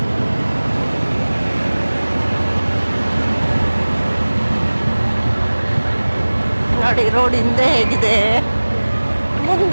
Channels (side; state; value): both; inverted; correlation -1.00